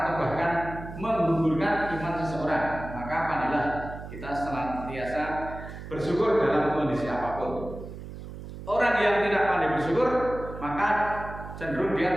atau bahkan menggugurkan iman seseorang. Maka pandailah kita senantiasa bersyukur dalam kondisi apapun. Orang yang tidak pandai bersyukur maka cenderung dia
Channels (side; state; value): right; noise; hum, 11 dB below the sound